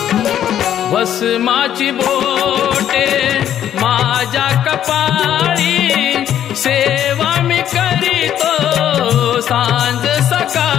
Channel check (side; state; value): right; quieter; 10.6 dB